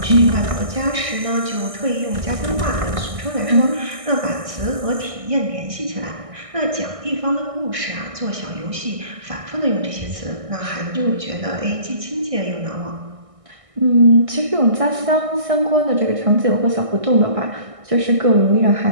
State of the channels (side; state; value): left; late; 1.6 ms